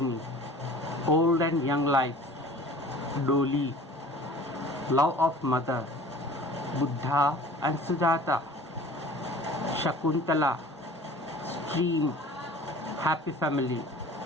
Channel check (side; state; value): both; normal; correlation 0.45